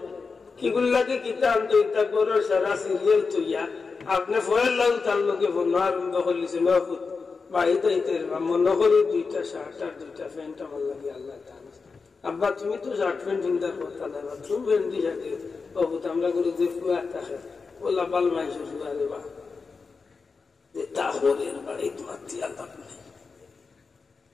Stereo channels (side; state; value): right; quieter; 4.7 dB